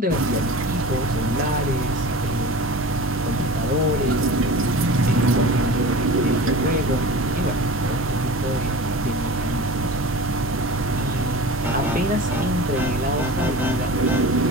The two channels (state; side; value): normal; both; correlation 0.35